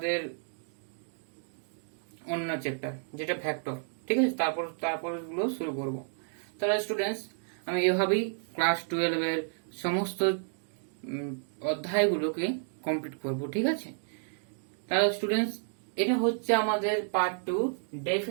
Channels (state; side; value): silent; left; digital silence